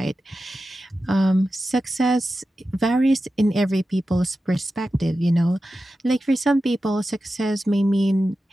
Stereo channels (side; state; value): both; normal; correlation 0.92